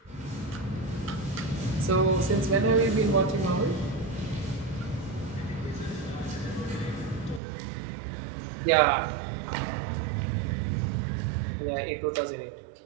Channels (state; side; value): drops out; left; at 7.4 s